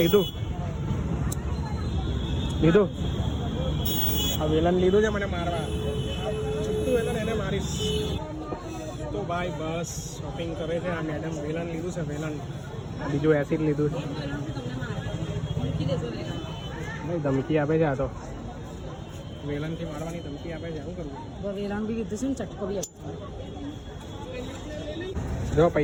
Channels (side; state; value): both; identical; correlation 1.00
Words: આ વેલન લીધું છે મને મારવા. છૂટું વેલન એને મારીશ તો ભાઈ. બસ શોપિંગ કરે છે આ મેડમ. વેલન લીધું છે, વેલન. બીજું એસિડ લીધું છે ભાઈ. ધમકી આપે છે આ તો, વેલનથી મારવાની ધમકી આપે છે. શું કરવું? વેલાણ બી કીધું છે ને, ચટકો બી આપતો. જો